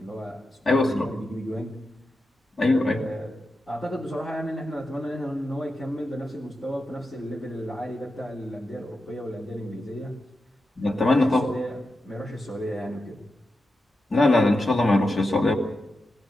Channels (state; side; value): normal; both; correlation 0.89